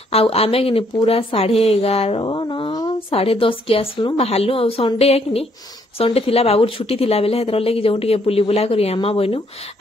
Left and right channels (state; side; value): normal; both; correlation 0.69